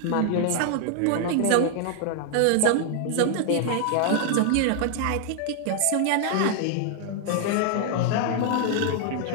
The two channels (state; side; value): different; both; correlation 0.00